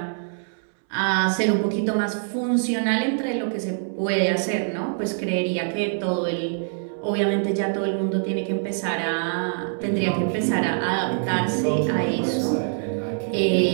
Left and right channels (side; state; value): left; silent; 62 dB below the other